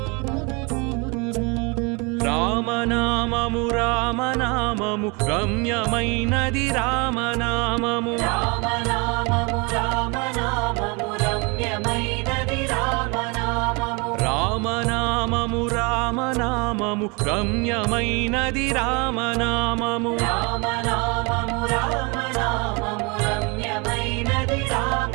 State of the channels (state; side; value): quieter; left; 29.5 dB